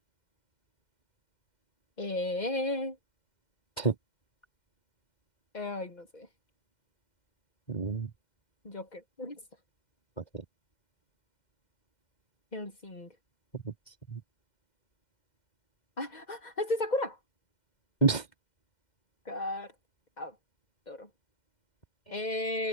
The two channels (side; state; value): right; late; 2.1 ms